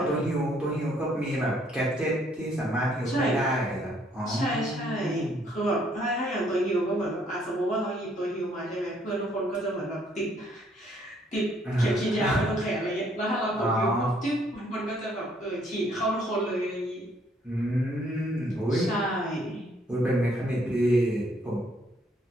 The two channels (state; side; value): normal; both; correlation 0.66